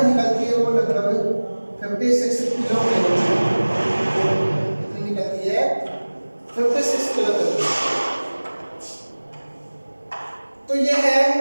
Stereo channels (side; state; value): both; inverted; correlation -1.00